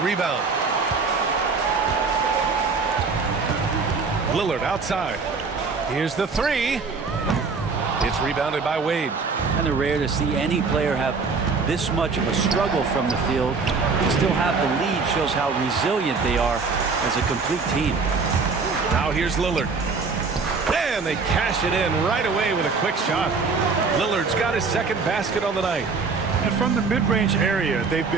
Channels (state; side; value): quieter; left; 4.6 dB